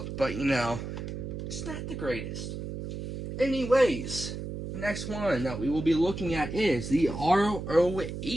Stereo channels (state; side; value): noise; right; hum, 7 dB below the sound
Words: but you know, it's not the greatest. Anyways, next one that we will be looking at is the